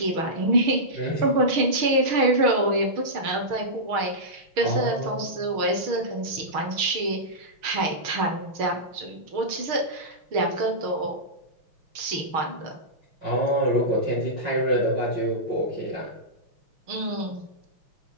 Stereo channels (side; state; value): left; late; 6.4 ms